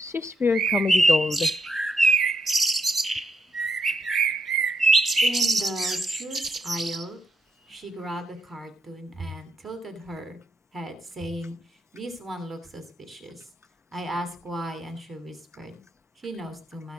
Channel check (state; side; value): normal; both; correlation 0.79